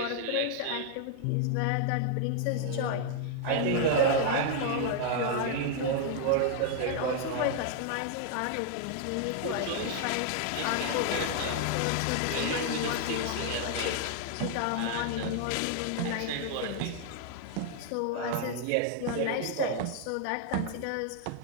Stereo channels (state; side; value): different; both; correlation 0.00